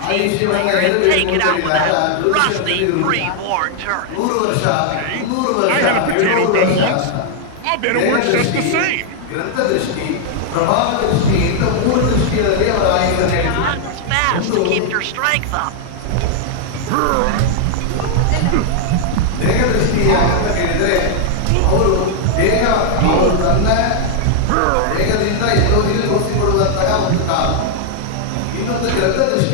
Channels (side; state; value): both; different; correlation 0.00